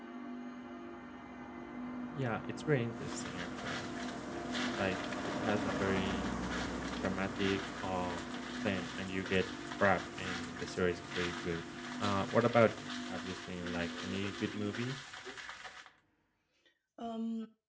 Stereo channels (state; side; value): identical; both; correlation 1.00